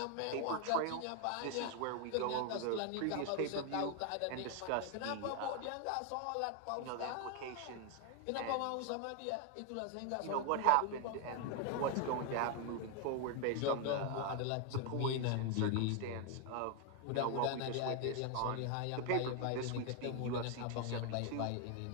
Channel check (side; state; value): both; different; correlation 0.01